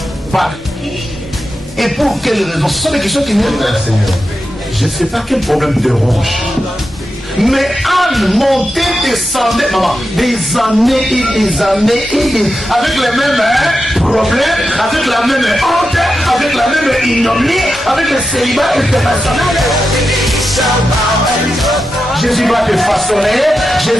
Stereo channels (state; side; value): normal; both; correlation 0.89